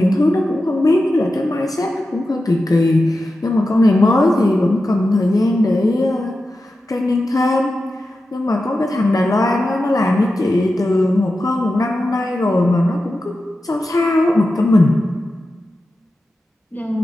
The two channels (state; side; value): normal; both; correlation 0.92